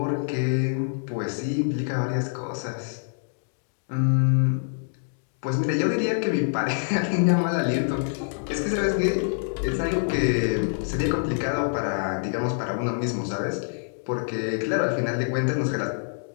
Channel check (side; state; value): right; silent; digital silence